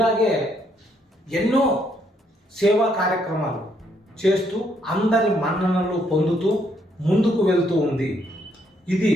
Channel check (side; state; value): both; normal; correlation 0.72